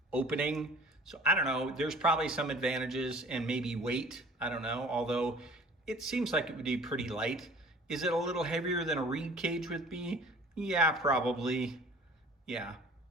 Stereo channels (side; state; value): both; normal; correlation 0.48